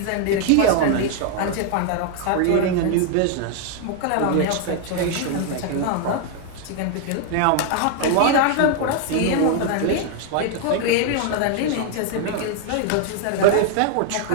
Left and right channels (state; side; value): different; both; correlation 0.00